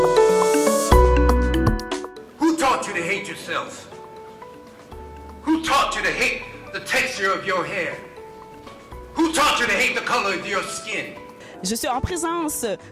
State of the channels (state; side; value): identical; both; correlation 1.00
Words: Who taught you to hate yourself? Who taught you to hate the texture of your hair? Who taught you to hate the color of your skin? Je suis en présence